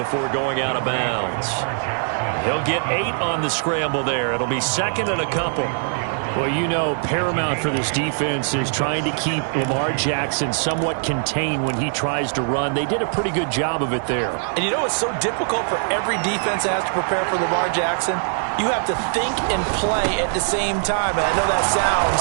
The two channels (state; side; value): silent; left; 64 dB below the other